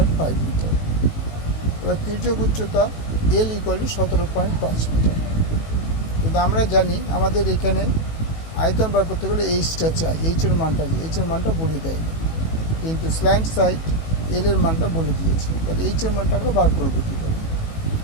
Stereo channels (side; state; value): right; late; 18 ms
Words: মিটার। এবার তির্যক উচ্চতা l = 17.5 মিটার। কিন্তু আমরা জানি আমাদের এখানে আয়তন বার করতে গেলে এইচটা চাই, এইচের মানটা বলে দেয়নি, কিন্তু স্ল্যান্ট সাইড এল এর মানটা বলে দিয়েছে। তাহলে এইচের মানটা আমরা বার করবো কী করে?